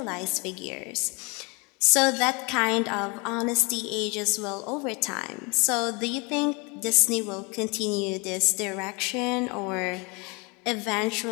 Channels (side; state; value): right; quieter; 29.5 dB